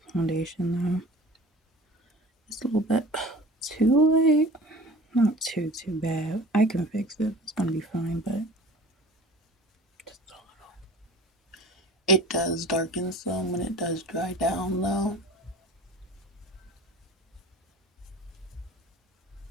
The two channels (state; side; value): normal; both; correlation 0.42